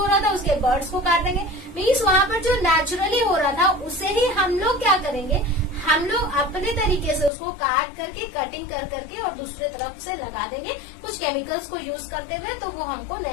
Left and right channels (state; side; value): drops out; right; at 7.3 s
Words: रहा था उसके बर्ड्स को काट देंगे। मीन्स वहां पर जो नेचुरली हो रहा था उसे ही हम लोग क्या करेंगे, हम लोग अपने तरीके से उसको काट करके कटिंग कर करके और दूसरे तरफ से लगा देंगे कुछ केमिकल्स को यूज करते हुए, तो वो हमको